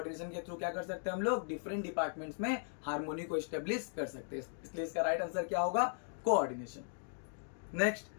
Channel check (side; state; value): right; silent; digital silence